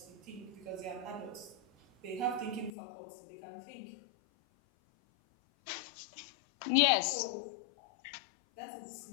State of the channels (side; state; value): right; drops out; at 2.7 s